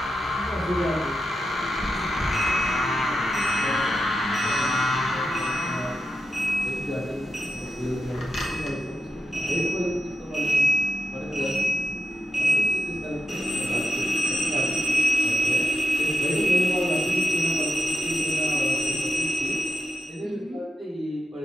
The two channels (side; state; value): both; normal; correlation 0.89